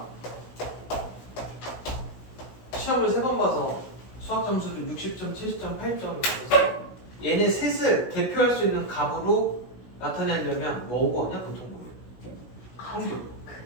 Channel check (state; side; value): late; right; 16 ms